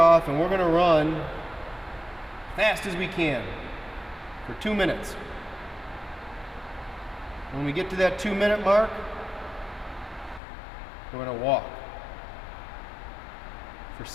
and we're going to run fast as we can for 2 minutes. When we get to that 2-minute mark, we're going to walk for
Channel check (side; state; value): right; drops out; at 10.4 s